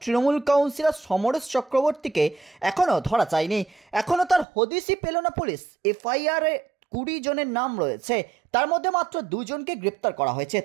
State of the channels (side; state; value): left; drops out; at 4.5 s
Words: তৃণমূল কাউন্সিলর সমরেশ চক্রবর্তীকে এখনও ধরা যায়নি। এখনও তার হদিশই পেল না পুলিশ। এফআইআরে 20 জনের নাম রয়েছে, তার মধ্যে মাত্র 2 জনকে গ্রেপ্তার করা হয়েছে।